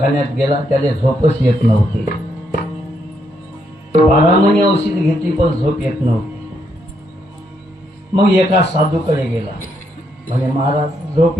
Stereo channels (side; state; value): both; normal; correlation 0.76